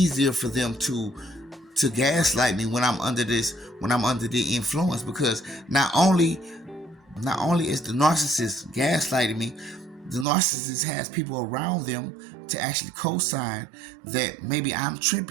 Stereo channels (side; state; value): left; drops out; at 10.2 s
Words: for them to gaslight me when I'm under the influence, because not only is the narcissist gaslighting me, the narcissist has people around them to actually co-sign that maybe I'm